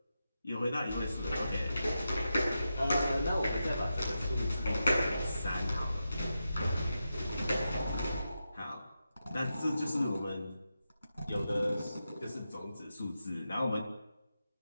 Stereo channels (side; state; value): both; inverted; correlation -0.89